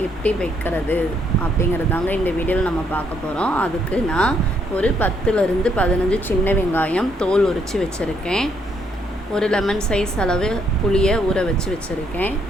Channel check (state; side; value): normal; both; correlation 0.71